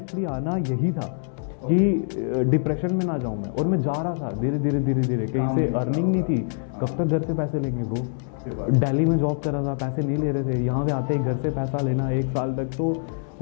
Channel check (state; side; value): silent; right; digital silence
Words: आना यही था कि डिप्रेशन में ना जाऊँ मैं, और मैं जा रहा था धीरे धीरे कहीं से अर्निंग नहीं थी। कब तक घर से पैसे लेंगे ब्रो। दिल्ली में जॉब कर रहा था, पैसे नहीं ले रहे थे, यहाँ पे आते ही घर से पैसा लेना 1 साल तक, तो